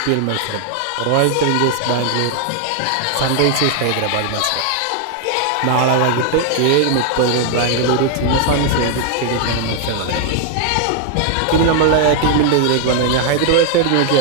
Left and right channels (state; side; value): different; both; correlation 0.00